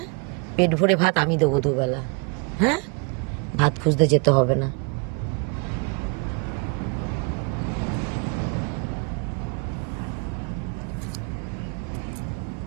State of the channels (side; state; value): left; quieter; 31.3 dB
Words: পেট ভরে ভাত আমি দেবো দুবেলা, হ্যাঁ? ভাত খুঁজতে যেতে হবে না।